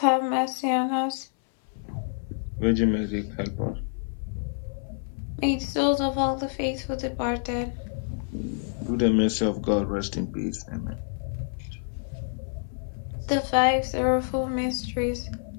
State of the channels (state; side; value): silent; right; 60 dB below the other